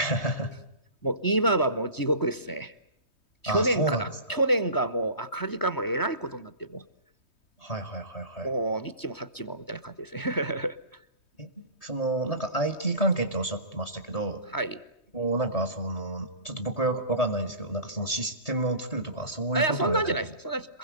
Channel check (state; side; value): late; right; 3.2 ms